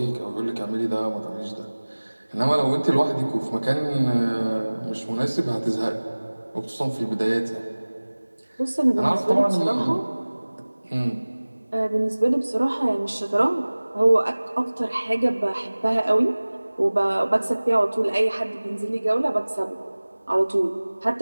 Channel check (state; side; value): inverted; both; correlation -1.00